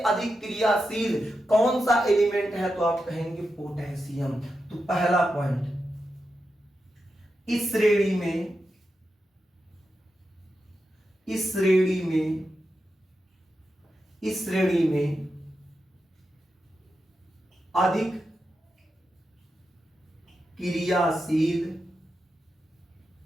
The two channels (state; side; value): normal; both; correlation 0.88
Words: अधिक क्रियाशील कौन सा एलिमेंट है, तो आप कहेंगे पोटेशियम। तो पहला पॉइंट, इस श्रेणी में अधिक क्रियाशील